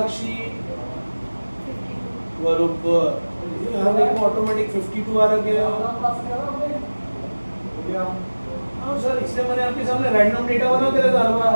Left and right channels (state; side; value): inverted; both; correlation -1.00